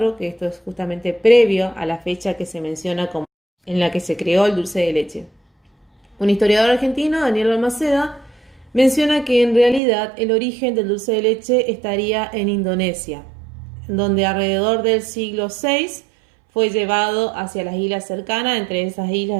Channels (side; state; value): left; drops out; at 9.8 s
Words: que esto es justamente previo a la fecha que se menciona como en la que se creó el dulce de leche. Un historiador argentino, Daniel Balmaceda, menciona que en realidad el origen del dulce de leche estaría en Indonesia, donde alrededor del siglo VI fue llevado hacia las islas cercanas, entre esas